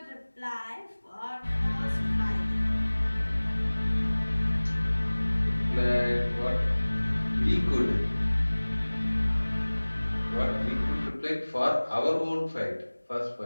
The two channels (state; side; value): inverted; both; correlation -1.00